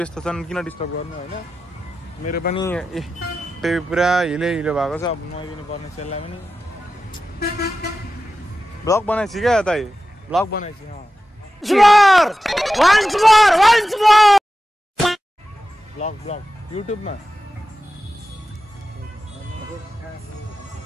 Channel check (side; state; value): both; normal; correlation 0.93